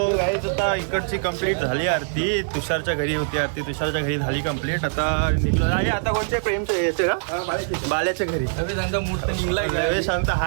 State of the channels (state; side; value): silent; left; digital silence